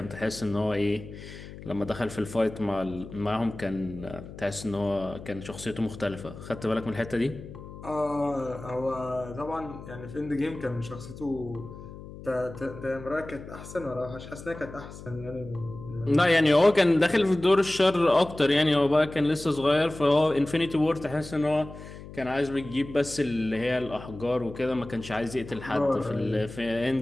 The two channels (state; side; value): noise; left; hum, 14 dB below the sound